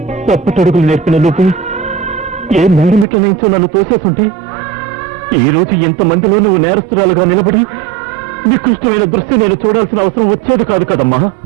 తప్పటడుగులు నేర్పిన నువ్వు ఏ మేడమిట్ల నుంచో నన్ను తోసేస్తుంటే ఈ రోజు ఎంతమందిలో నువ్వు నేరస్తురాలుగా నిలబడి నికృష్టమైన దృష్టి నేను చూడాల్సిన అవసరం వచ్చేది కాదు కదమ్మా.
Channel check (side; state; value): left; drops out; at 3.1 s